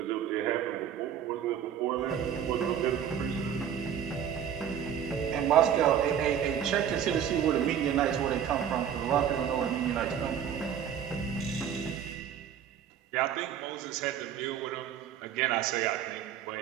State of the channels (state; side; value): quieter; left; 9.0 dB